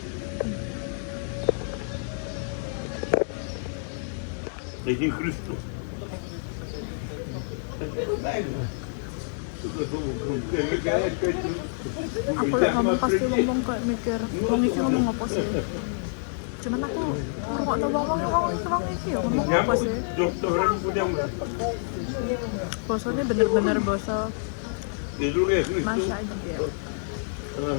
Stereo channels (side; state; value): right; silent; 60 dB below the other